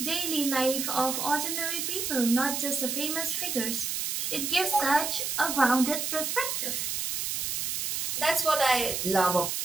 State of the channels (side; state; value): right; noise; hiss, 1 dB below the sound